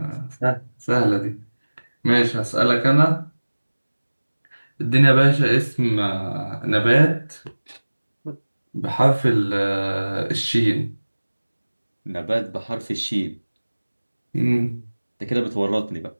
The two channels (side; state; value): both; inverted; correlation -1.00